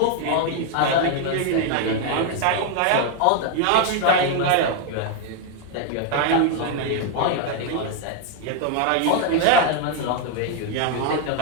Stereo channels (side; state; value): both; different; correlation 0.01